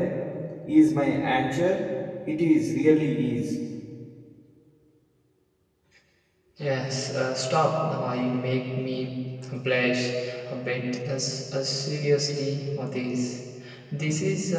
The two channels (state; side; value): identical; both; correlation 1.00